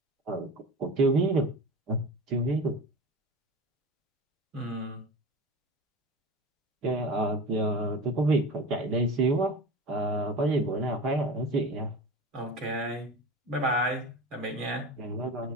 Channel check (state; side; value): normal; both; correlation 0.32